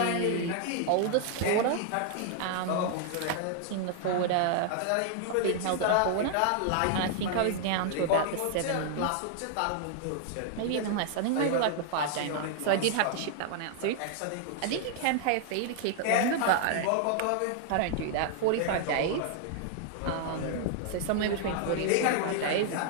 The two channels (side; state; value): both; different; correlation 0.00